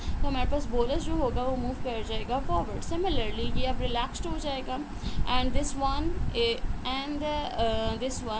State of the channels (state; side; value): identical; both; correlation 1.00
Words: तो हमारे पास बोलस जो होगा वो मूव कर जाएगा फॉरवर्ड। सिमिलरली ये अब रिलैक्स्ड हो जाएगा and this one this